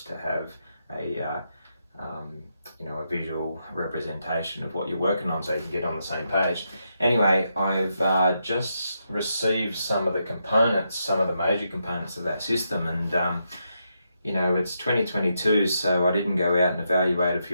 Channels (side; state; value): both; inverted; correlation -0.82